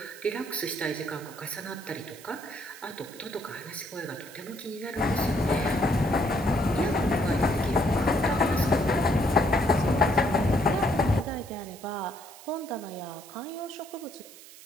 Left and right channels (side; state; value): right; noise; hiss, 19 dB below the sound